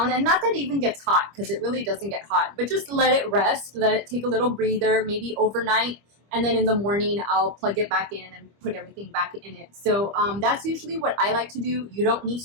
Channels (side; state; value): left; late; 25 ms